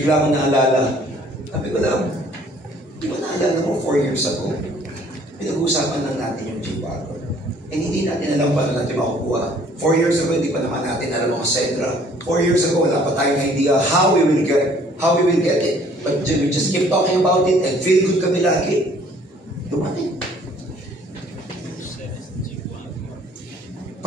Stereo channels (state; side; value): normal; both; correlation 0.58